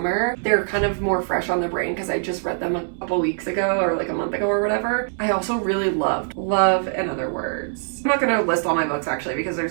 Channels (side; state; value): left; silent; digital silence